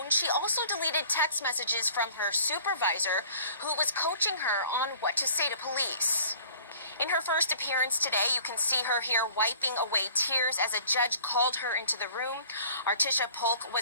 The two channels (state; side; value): inverted; both; correlation -0.51